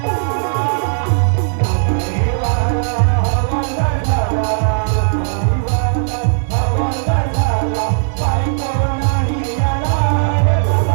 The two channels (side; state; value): left; silent; digital silence